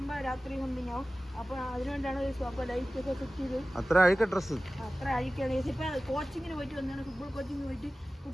രാത്രി സംതിങ് ആവും. അപ്പോൾ അതിനുവേണ്ടിയാണ് അപ്പോൾ ലൈറ്റൊക്കെ സെറ്റ് ചെയ്ത്. അത്ര അഴുക്ക ഡ്രസ്സ് അത്ര അഴുക്കാണ്. ഇപ്പം കോച്ചിങ്ങിന് പോയിട്ട് വന്നതാണ്. ഫുട്ബോൾ കോച്ചിങ്ങിന് പോയിട്ട്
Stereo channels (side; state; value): both; normal; correlation 0.96